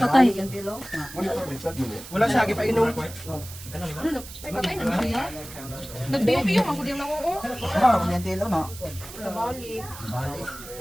Wala siya, ipainom. Ay, patay na siya. Nagbiyo-biyo, magkudyang na oo. Yung tilo, no? Nabali. Nabalik.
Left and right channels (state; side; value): noise; right; hiss, 14 dB below the sound